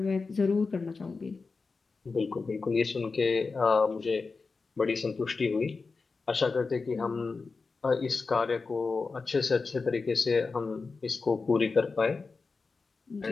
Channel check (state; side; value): quieter; right; 4.3 dB